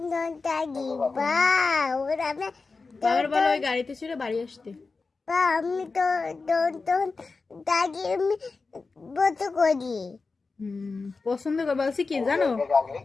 নন দাদি বা ওরা আমি বাবার বলো ওই গাড়িতে চড়ে বাড়ি আসতে। বা আমি তো নন দাদি আমি বলতে করি পছন্দ করে বলছি কি জানো, গাড়ি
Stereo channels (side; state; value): right; quieter; 4.1 dB